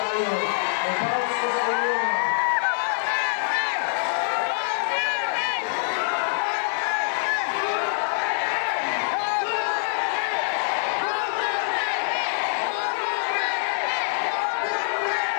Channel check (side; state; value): right; silent; digital silence